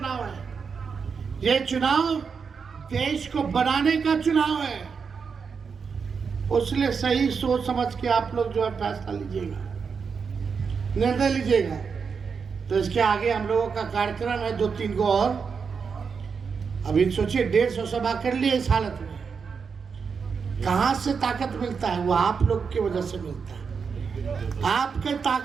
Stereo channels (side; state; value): left; quieter; 5.8 dB